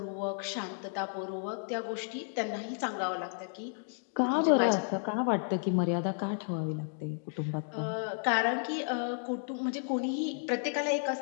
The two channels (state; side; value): silent; right; digital silence